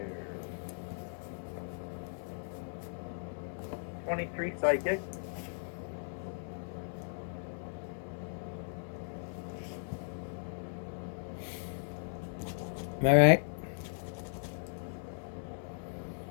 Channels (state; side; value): silent; right; digital silence